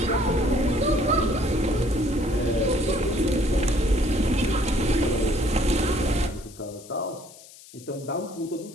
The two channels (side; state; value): left; noise; hiss, 20 dB below the sound